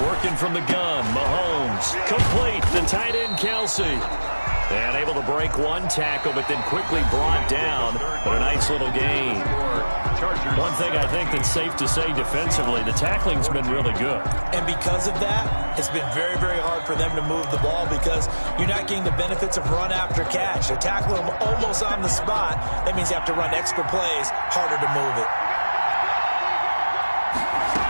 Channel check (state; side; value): inverted; both; correlation -1.00